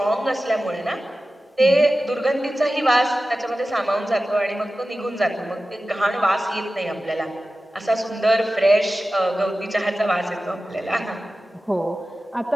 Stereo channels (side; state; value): both; normal; correlation 0.95